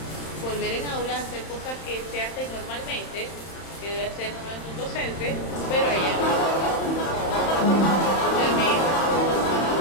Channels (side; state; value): right; late; 31 ms